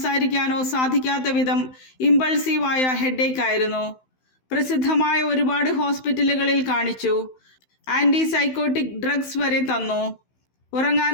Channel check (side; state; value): right; late; 16 ms